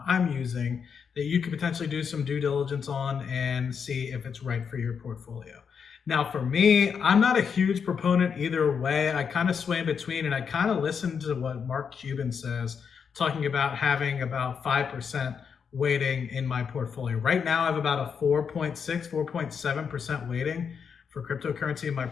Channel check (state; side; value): quieter; right; 6.6 dB